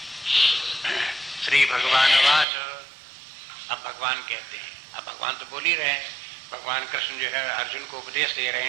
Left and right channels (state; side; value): drops out; left; at 2.5 s